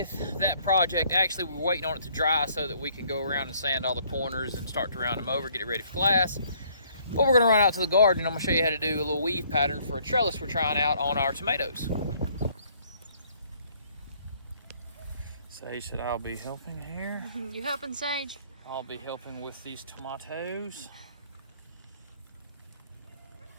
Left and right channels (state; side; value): inverted; both; correlation -0.63